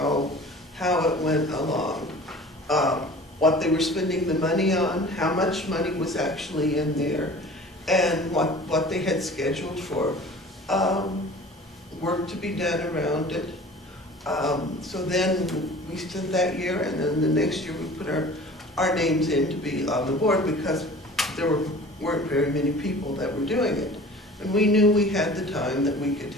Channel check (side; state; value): both; normal; correlation 0.43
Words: it went along, what they were spending the money on, how much money was actually in there, and what they had scheduled for work to be done around it. So then we spent that year, and then the next year we put our names in to be on the board because there weren't very many people that were doing it. And we knew we had the time that we could